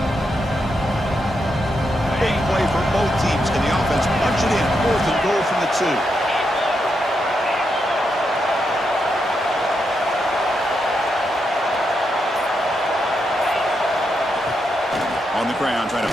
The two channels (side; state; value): both; normal; correlation 0.83